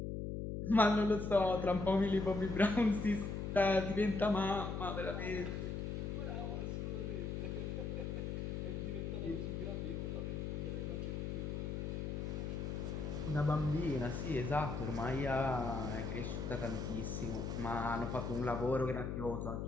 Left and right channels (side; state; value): left; noise; hum, 3 dB below the sound